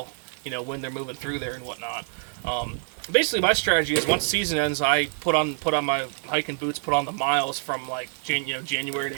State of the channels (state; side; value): silent; left; 61 dB below the other